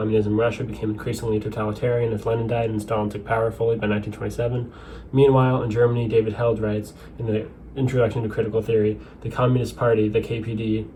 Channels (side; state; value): both; identical; correlation 1.00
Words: in Russia became increasingly totalitarian as Lenin died and Stalin took power fully by 1927. Meanwhile, in Germany, David Held writes in the Introduction to Critical Theory, the Communist Party, the KPD,